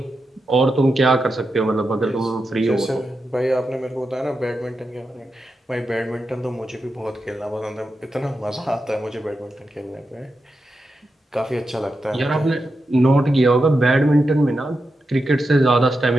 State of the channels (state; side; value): normal; both; correlation 0.88